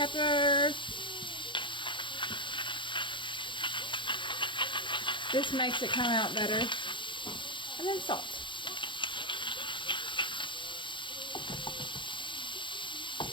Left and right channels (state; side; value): late; right; 0.23 ms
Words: This makes it come out better. And then salt.